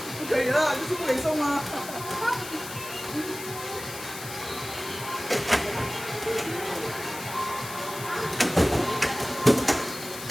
不可以了，就是不给送啊。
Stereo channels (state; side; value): noise; left; hiss, 11 dB below the sound